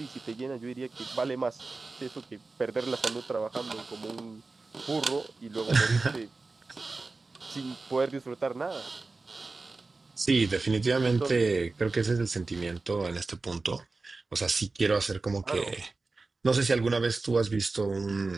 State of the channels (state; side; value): quieter; left; 3.7 dB